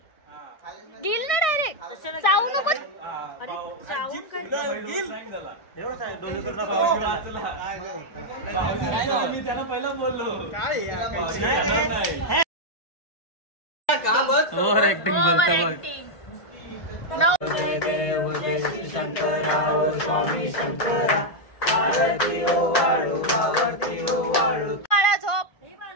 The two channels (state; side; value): late; right; 1.5 ms